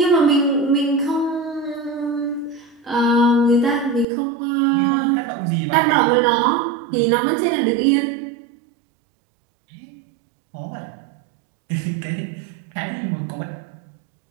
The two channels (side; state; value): left; drops out; at 4.0 s